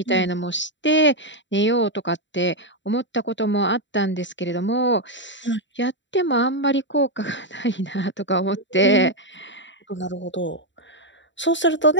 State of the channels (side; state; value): right; late; 0.54 ms